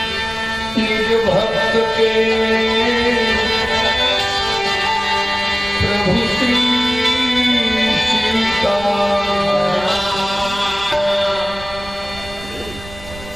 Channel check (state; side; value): noise; right; rumble, 16 dB below the sound